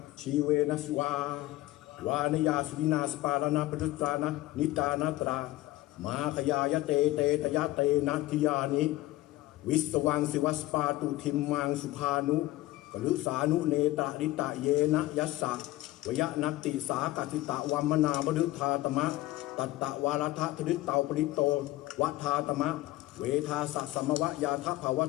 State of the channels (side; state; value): right; quieter; 17.0 dB